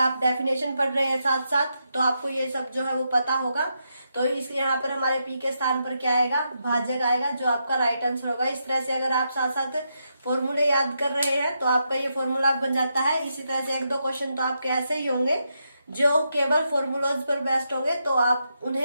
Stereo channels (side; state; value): both; inverted; correlation -0.83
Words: डेफिनेशन पढ़ रहे हैं साथ साथ तो आपको ये सब जो है वो पता होगा। तो इस यहाँ पर हमारे पी के स्थान पर क्या आएगा, भाजक आएगा, जो आपका राइट आंसर होगा। इस तरह से अगर आप साथ साथ फॉर्मूले याद कर रहे हैं तो आपका ये फॉर्मूला बन जाता है। इसी तरह से एक दो क्वेश्चन तो आपके ऐसे ही होंगे जो केवल फॉर्मूलाज पर बेस्ड होंगे, तो आप